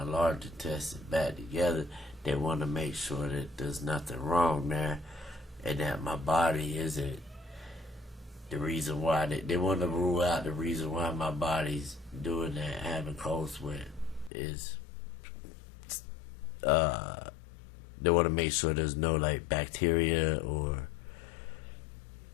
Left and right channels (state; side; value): drops out; right; at 14.3 s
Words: large intestine back together, they want to make sure that there's nothing wrong there, and that my body isn't the reason why. They want to rule out the reason why my body's doing that, having cold sweat, is they want to make sure there's no like bacteria or